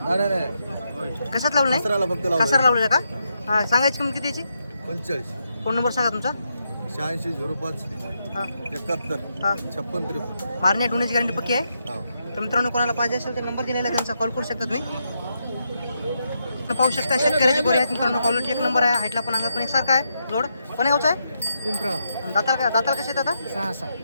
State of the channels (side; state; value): both; inverted; correlation -0.82